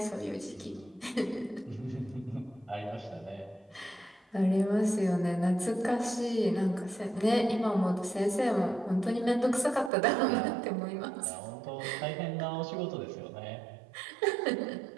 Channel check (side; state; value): left; drops out; at 9.9 s